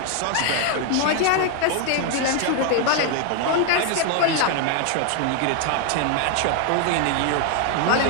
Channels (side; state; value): both; different; correlation 0.00